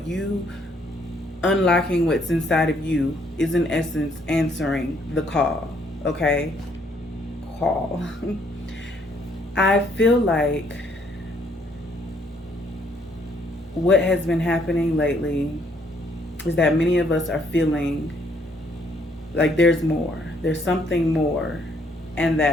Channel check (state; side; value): normal; both; correlation 0.68